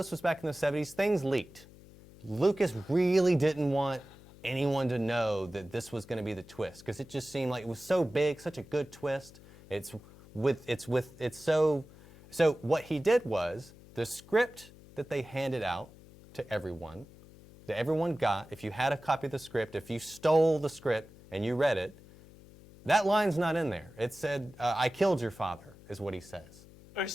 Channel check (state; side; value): noise; left; hum, 21 dB below the sound